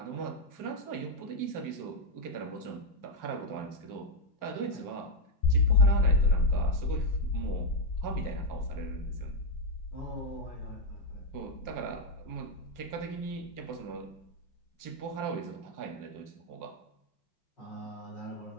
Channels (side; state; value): right; late; 5.6 ms